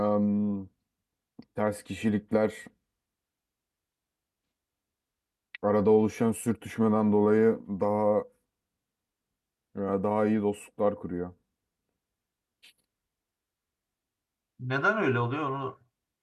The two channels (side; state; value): both; identical; correlation 1.00